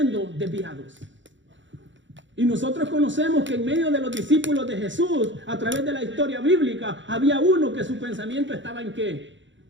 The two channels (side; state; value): left; late; 0.54 ms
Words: desviados. Y nosotros conocemos que en medio de los discípulos de Jesús, a través de la historia bíblica, había uno que su pensamiento estaba ¿en qué?